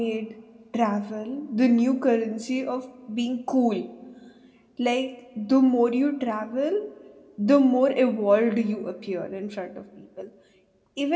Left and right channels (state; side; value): identical; both; correlation 1.00